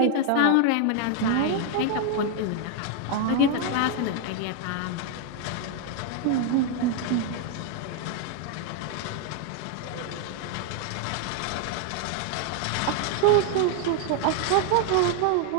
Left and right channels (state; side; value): different; both; correlation 0.00